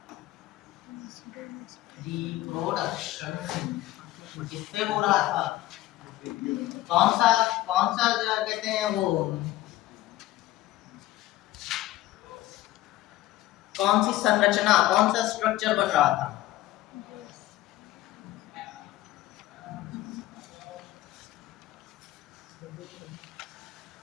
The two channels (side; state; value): right; quieter; 15.8 dB